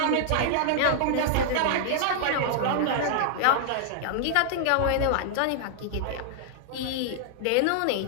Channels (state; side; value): different; both; correlation -0.01